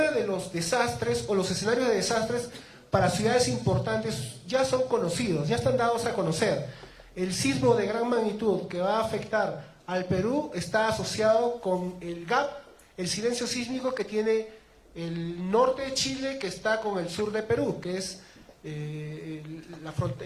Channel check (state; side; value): identical; both; correlation 1.00